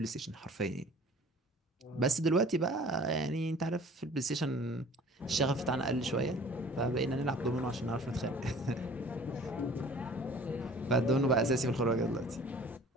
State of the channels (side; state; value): both; normal; correlation 0.48